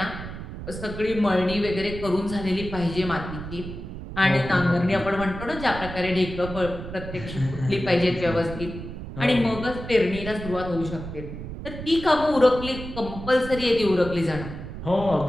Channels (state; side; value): noise; right; rumble, 9 dB below the sound